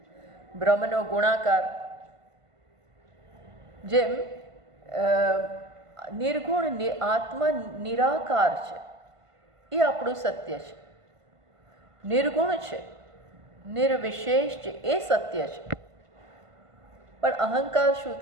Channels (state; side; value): late; left; 1.5 ms